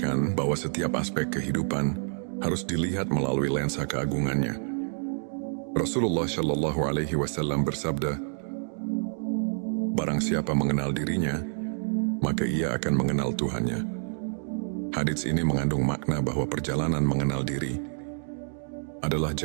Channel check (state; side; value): silent; left; digital silence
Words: bahwa setiap aspek kehidupan harus dilihat melalui lensa keagungannya. Rasulullah Shallallahu Alaihi Wasallam bersabda, "Barang siapa mengenal dirinya, maka ia akan mengenal Tuhannya." Hadits ini mengandung makna bahwa perjalanan mengenal diri adalah